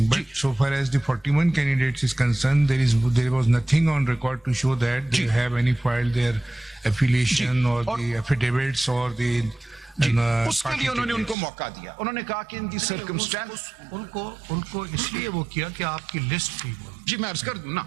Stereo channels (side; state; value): left; drops out; at 11.4 s